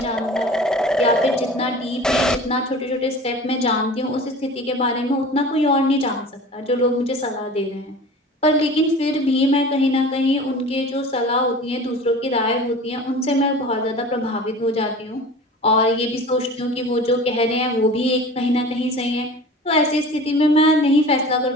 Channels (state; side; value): normal; both; correlation 0.39